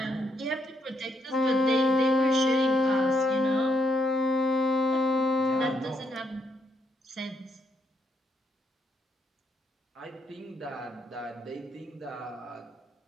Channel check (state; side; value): normal; both; correlation 0.76